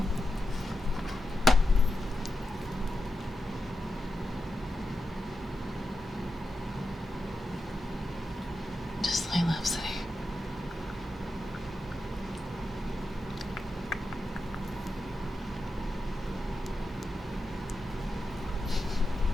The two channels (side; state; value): both; normal; correlation 0.89